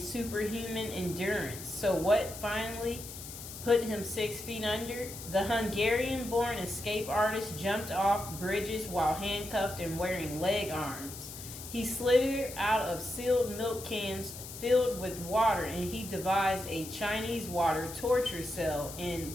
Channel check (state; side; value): noise; left; hiss, 11 dB below the sound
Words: superhuman endurance. So what finally put him 6 feet under? The Hungarian-born escape artist jumped off bridges while handcuffed and wearing leg irons. He slithered out of sealed milk cans filled with water, and he devised a Chinese water torture cell in